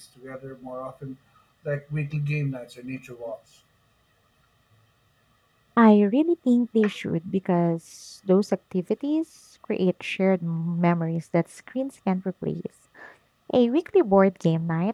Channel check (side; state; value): both; identical; correlation 1.00